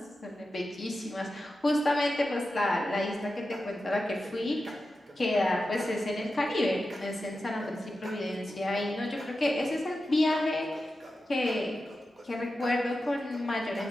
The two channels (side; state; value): both; normal; correlation 0.92